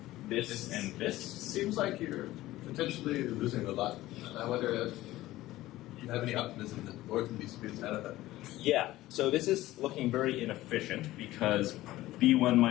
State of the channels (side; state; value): right; quieter; 16.5 dB